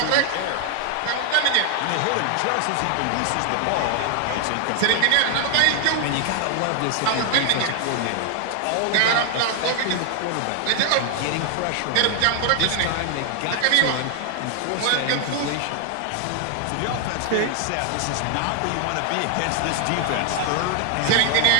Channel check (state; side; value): different; both; correlation 0.00